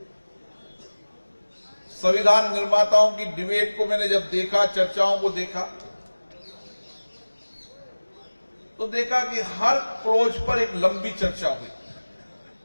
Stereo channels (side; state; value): both; inverted; correlation -1.00